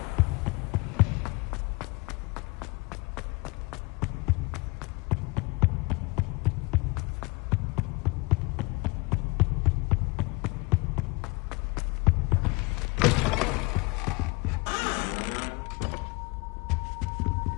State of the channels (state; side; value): quieter; right; 25.6 dB